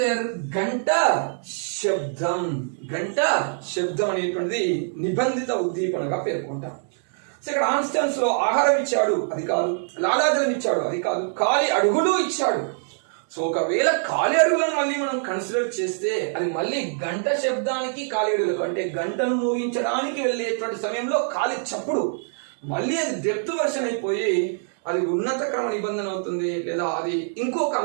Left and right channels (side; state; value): left; silent; 62 dB below the other